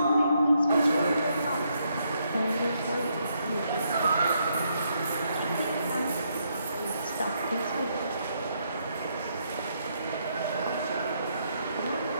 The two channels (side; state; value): both; inverted; correlation -0.75